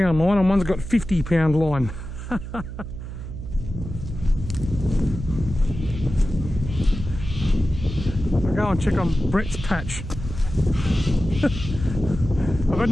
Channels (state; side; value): noise; right; hum, 9 dB below the sound